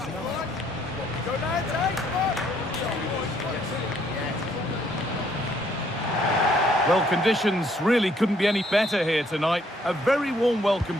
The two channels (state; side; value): normal; both; correlation 0.67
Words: Well, conditions really couldn't be any better here tonight. A very warm welcome